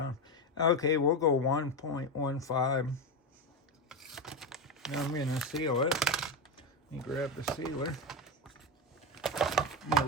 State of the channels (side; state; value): both; normal; correlation 0.15